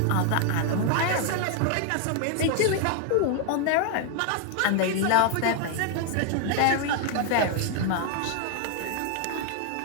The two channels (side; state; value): both; different; correlation 0.00